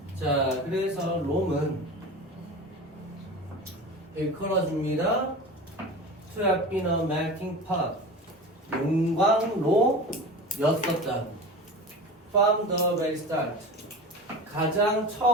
자, 그래서 롬은 일컬어줍니다. To have been a melting pot. 용광로였었다. From the very start. 가장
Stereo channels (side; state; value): both; normal; correlation 0.32